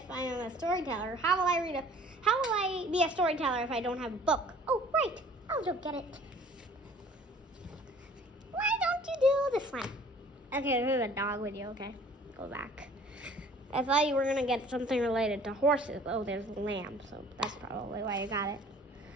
I am a storyteller, how will I be a storyteller if I don't have a book? Oh, right. I'll go get it. Why don't you do this one? Okay, there's a dog with you, okay? Go back. I thought you were going to get something related to horses. Oh, there's a lamb, so that's probably why you got it.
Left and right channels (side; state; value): both; normal; correlation 0.52